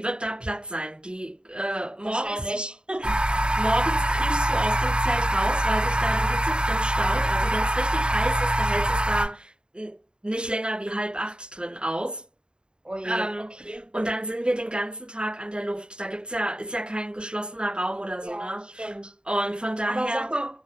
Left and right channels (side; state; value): left; late; 0.050 ms